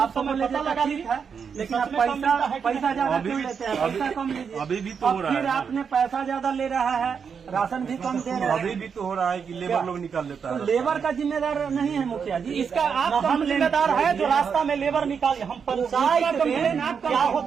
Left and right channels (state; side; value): quieter; left; 6.5 dB